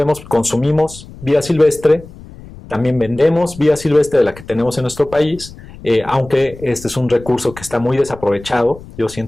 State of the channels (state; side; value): noise; left; rumble, 18 dB below the sound